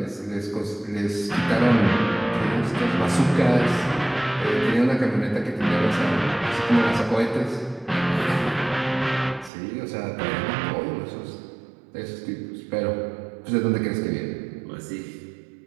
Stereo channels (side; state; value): left; drops out; at 9.5 s